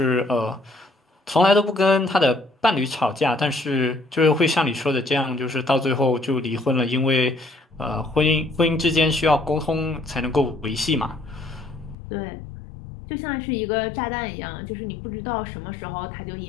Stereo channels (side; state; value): right; drops out; at 12.0 s